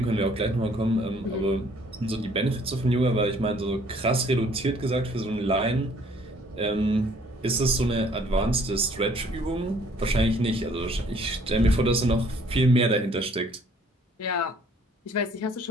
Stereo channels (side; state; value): both; normal; correlation 0.59